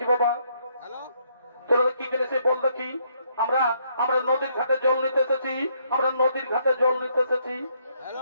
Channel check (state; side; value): inverted; both; correlation -0.71